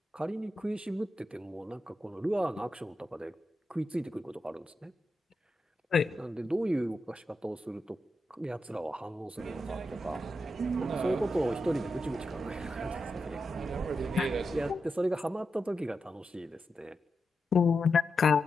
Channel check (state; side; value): normal; both; correlation 0.88